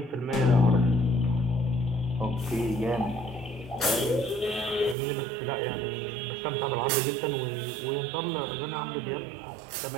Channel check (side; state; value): left; drops out; at 5.0 s